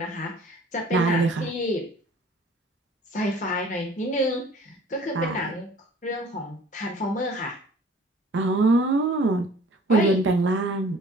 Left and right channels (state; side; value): normal; both; correlation 0.51